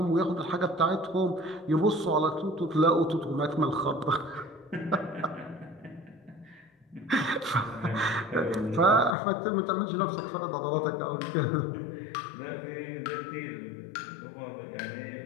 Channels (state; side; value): drops out; right; at 9.2 s